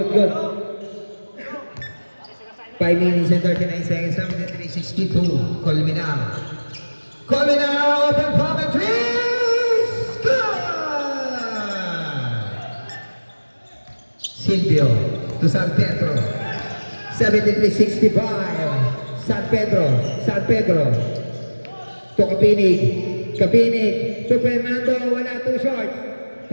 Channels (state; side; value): inverted; both; correlation -1.00